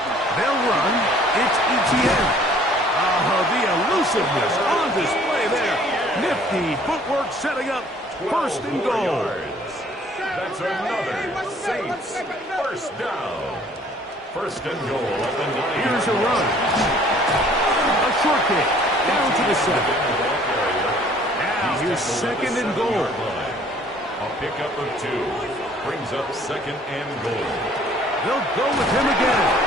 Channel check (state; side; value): normal; both; correlation 0.56